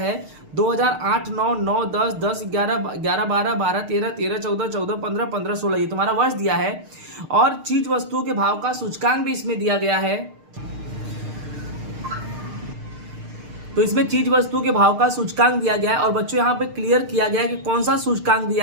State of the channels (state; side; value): late; left; 6.6 ms